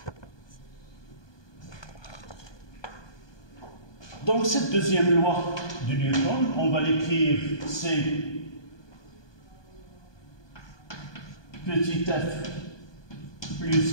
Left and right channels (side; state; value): right; late; 1.2 ms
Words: Donc cette deuxième loi de Newton, on va l'écrire C petit f